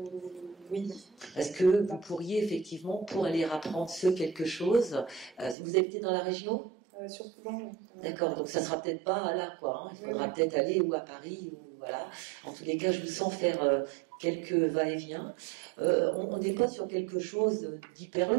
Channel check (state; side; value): drops out; left; at 5.6 s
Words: Oui. Est-ce que vous pourriez effectivement, pour aller apprendre ce quelque chose, vous habitez dans la région? Sur Toulon. D'accord, donc ça sera peut-être pas là, quoi. Hein. Il faudra peut-être aller ou à Paris, ou voilà. En tous les cas, je vous sens faire quelques va-et-vient. On n'est pas sur quelque chose d'hyper